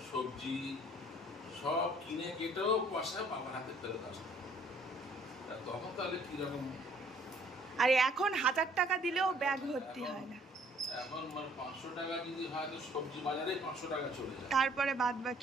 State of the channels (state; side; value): normal; both; correlation 0.59